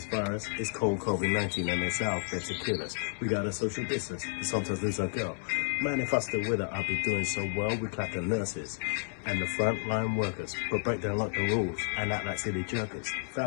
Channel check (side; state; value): right; silent; digital silence